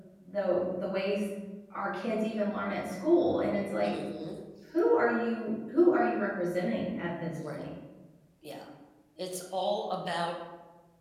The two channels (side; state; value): both; identical; correlation 1.00